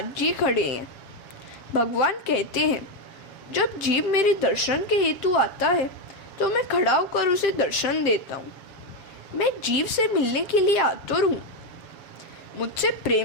जी खड़े हैं। भगवान कहते हैं, जब जीव मेरे दर्शन के हेतु आता है तो मैं खड़ा होकर उसे दर्शन देता हूँ। मैं जीव से मिलने के लिए आतुर हूँ। मुझसे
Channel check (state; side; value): late; right; 7.2 ms